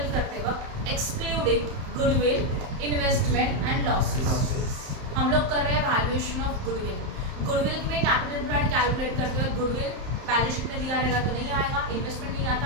करते वक्त excluding goodwill, investment and losses. हम लोग कर रहे हैं वैल्यूएशन ऑफ गुडविल। गुडविल में कैपिटल एम्प्लॉयड कैलकुलेट करते वक्त गुडविल बैलेंस शीट में दिया रहेगा तो नहीं आएगा, इन्वेस्टमेंट नहीं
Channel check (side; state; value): left; late; 31 ms